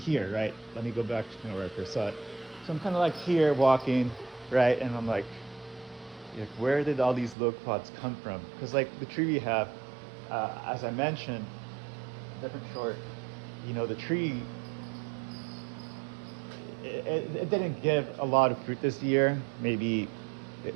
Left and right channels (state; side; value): drops out; left; at 7.4 s